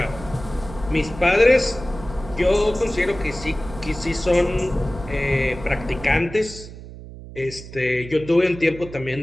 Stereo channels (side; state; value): right; noise; hum, 14 dB below the sound